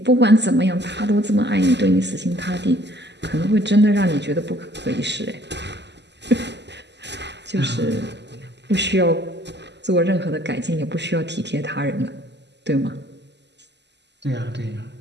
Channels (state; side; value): late; left; 0.50 ms